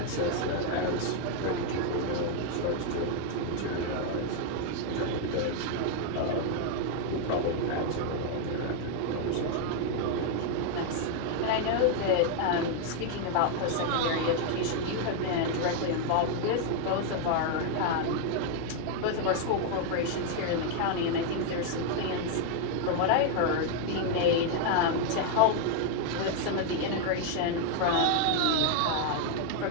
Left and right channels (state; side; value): different; both; correlation 0.00